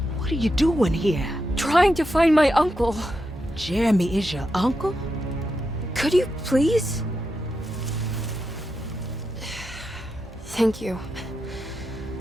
What are you doing here? Trying to find my uncle. Jeremy is your uncle? Could you please? Thank you.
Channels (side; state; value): both; normal; correlation 0.86